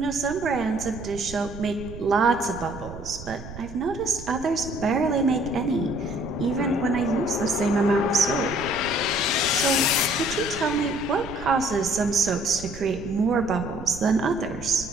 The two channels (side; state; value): right; noise; rumble, 13 dB below the sound